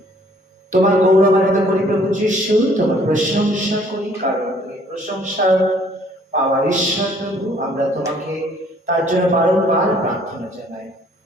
তোমার গৌরবান্বিত করি প্রভু যীশু, তোমার প্রশংসা করি, কারণ তুমি প্রশংসা পাওয়ার ঈশ্বর প্রভু। আমরা তোমাকে তার জন্য বারংবার প্রার্থনা জানাই।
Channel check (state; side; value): normal; both; correlation 0.60